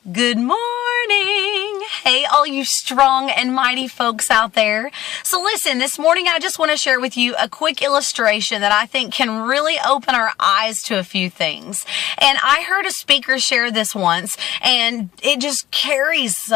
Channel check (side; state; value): right; quieter; 14.1 dB